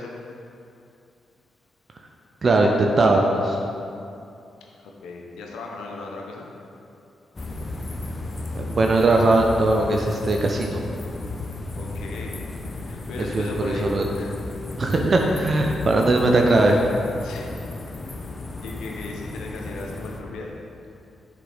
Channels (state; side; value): normal; both; correlation 0.85